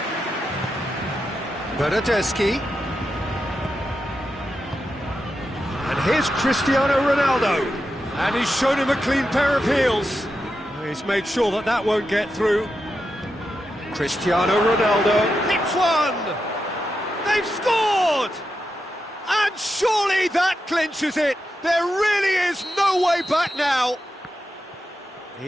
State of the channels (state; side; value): normal; both; correlation 0.88